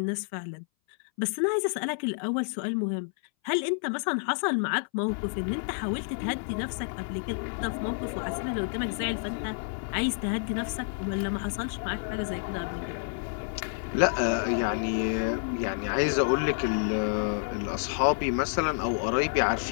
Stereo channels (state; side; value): silent; right; 58 dB below the other